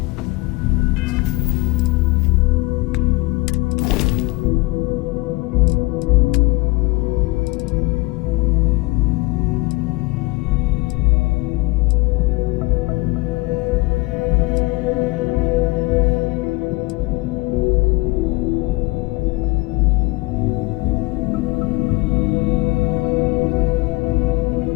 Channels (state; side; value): quieter; right; 23.2 dB